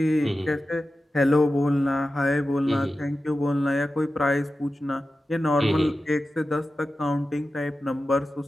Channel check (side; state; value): both; normal; correlation 0.93